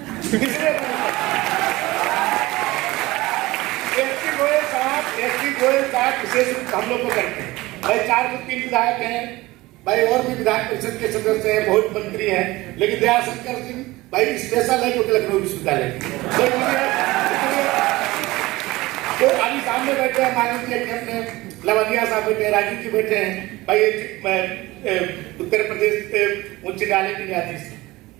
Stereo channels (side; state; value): left; quieter; 19.7 dB